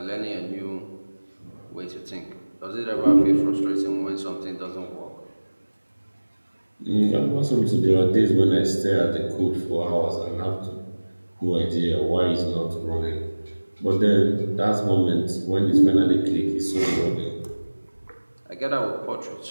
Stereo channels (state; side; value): inverted; both; correlation -1.00